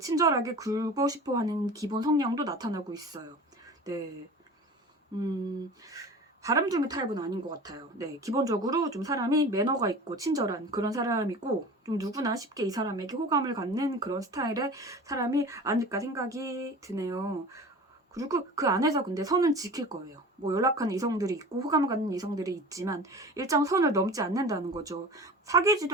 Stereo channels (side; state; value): both; normal; correlation 0.37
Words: 친절하게 굴고 싶어 하는 기본 성향도 나타나고 있어요. 네. 바람둥이 타입은 아닌 것 같아요. 네, 기본적으로 좀 사람이 매너가 있고 친절한 그런 사람이고 좀 누구나 쉽게 이 사람에게 호감을 갖는 그런 스타일의 사람이 아닐까 생각이 드네요. 그리고 그 안에서 근데 선은 지킬 거예요. 뭐 연락하는 이성들이 있고 호감을 갖는 이성들이 있지만 일정 선을 넘지 않는다는 거죠.